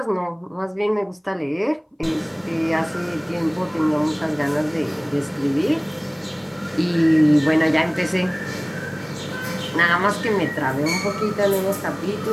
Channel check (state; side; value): identical; both; correlation 1.00